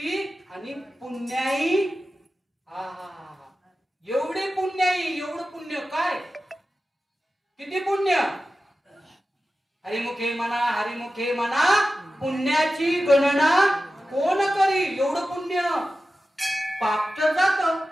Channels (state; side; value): normal; both; correlation 0.94